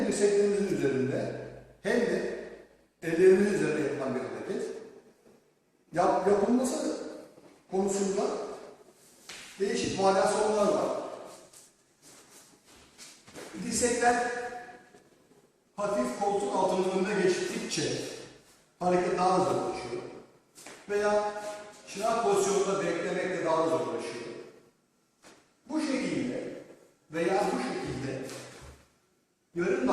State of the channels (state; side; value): identical; both; correlation 1.00